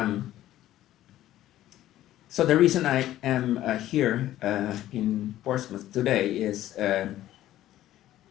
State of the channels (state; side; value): quieter; right; 13.7 dB